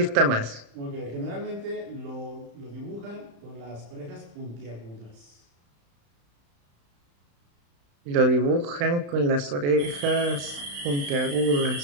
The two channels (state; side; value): late; left; 35 ms